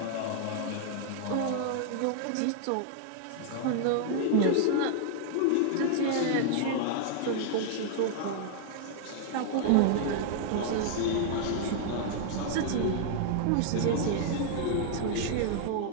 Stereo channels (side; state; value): both; different; correlation -0.01